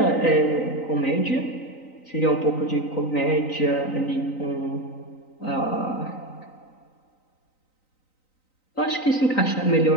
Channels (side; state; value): right; late; 3.9 ms